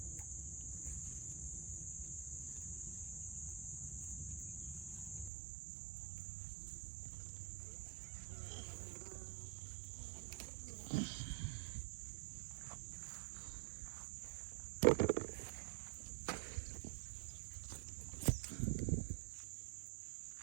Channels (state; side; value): drops out; left; at 5.3 s